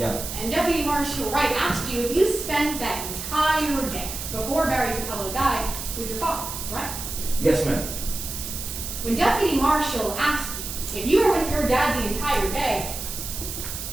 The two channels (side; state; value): right; noise; hiss, 7 dB below the sound